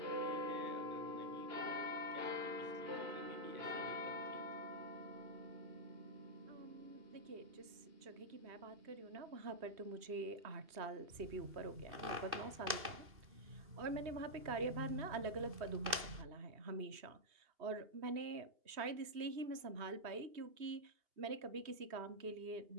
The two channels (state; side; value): late; left; 2.6 ms